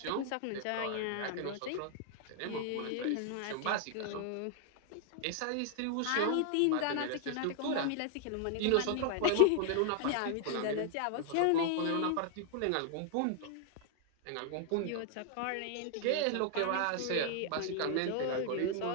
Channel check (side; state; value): both; different; correlation 0.00